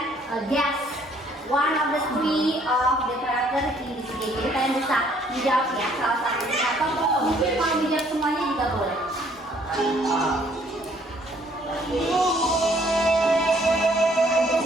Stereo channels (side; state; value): both; normal; correlation 0.63